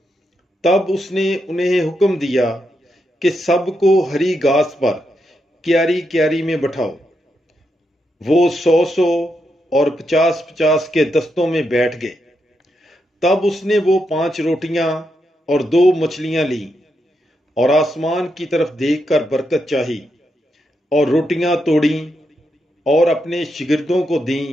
تب اس نے انہیں حکم دیا کہ سب کو ہری گھاس پر کیاری کیاری میں بٹھاؤ۔ وہ 100 اور 50 کے دستوں میں بیٹھ گئے۔ تب اس نے وہ 5 روٹیاں اور 2 مچھلیاں لیں اور آسمان کی طرف دیکھ کر برکت چاہی، اور روٹیاں توڑیں اور اپنے شاگردوں کو دیں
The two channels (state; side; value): normal; both; correlation 0.83